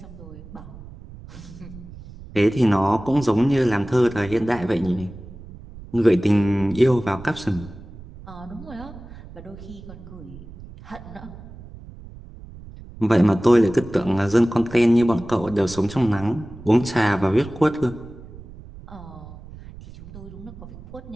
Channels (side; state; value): right; noise; rumble, 16 dB below the sound